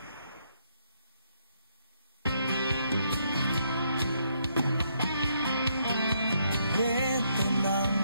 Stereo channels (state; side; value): inverted; both; correlation -0.74